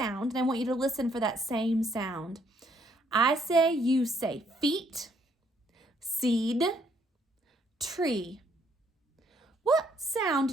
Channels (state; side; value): normal; both; correlation 0.69